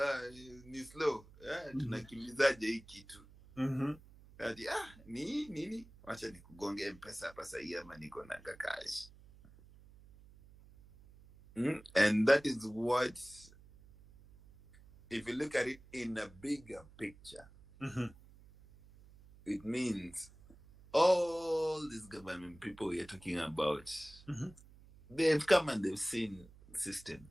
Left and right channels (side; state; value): right; noise; hum, 22 dB below the sound